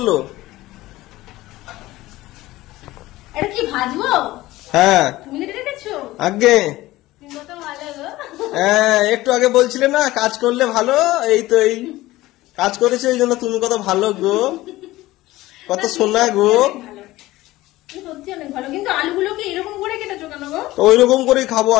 এটা কি ভাজবো? হ্যাঁ তুমি রেখেছো আগে। তুমি কত ভালো গো। হ্যাঁ একটু আগে বলছিলে না কাজ করলে ভালো, এই তো এই কাজ করেছে, এই জন্য তুমি কত ভালো গো, কত সোনা গো। সত্যি অনেক ভালো, কিন্তু আলুগুলোকে এরকম করে কেটেছো কেন গো? তো ওই রকম করেই খাবো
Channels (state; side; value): quieter; right; 17.5 dB